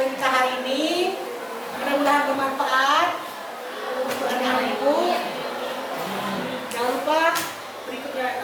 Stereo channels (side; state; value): both; identical; correlation 1.00